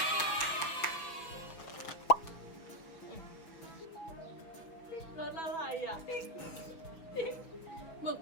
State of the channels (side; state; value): right; late; 6.1 ms